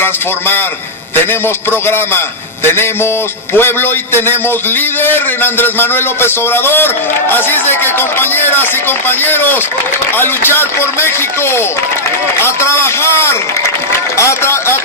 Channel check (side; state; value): both; normal; correlation -0.06